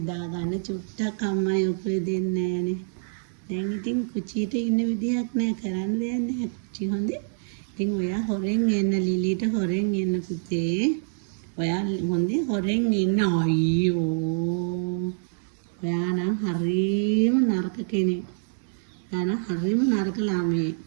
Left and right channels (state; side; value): silent; left; digital silence